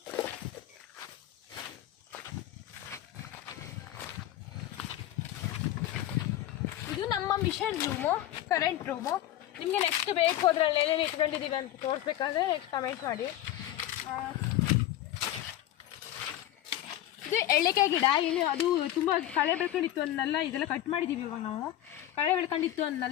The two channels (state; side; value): quieter; right; 12.9 dB